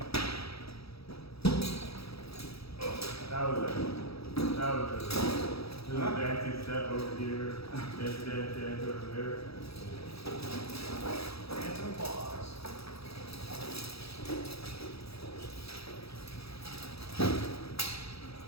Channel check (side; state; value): right; late; 0.77 ms